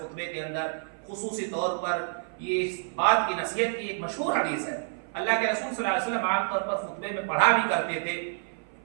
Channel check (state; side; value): silent; left; 56 dB below the other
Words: کے اندر خصوصی طور پر یہ بات کی نصیحت کی. ایک مشہور حدیث ہے, اللہ کے رسول صلی اللہ علیہ وسلم عام طور پر خطبے میں پڑھا بھی کرتے تھے